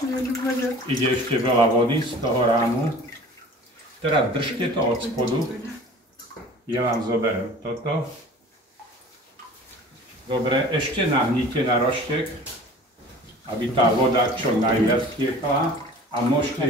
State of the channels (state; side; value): normal; both; correlation 0.44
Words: Ide ešte veľa vody z toho rámu. Teraz držte to od spodu. Ja vám zoberiem toto. Dobre, ešte nahnite na roštek, aby tá voda čo najviac tiekla. A